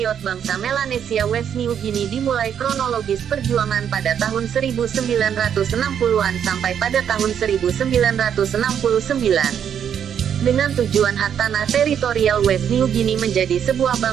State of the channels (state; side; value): quieter; left; 8.6 dB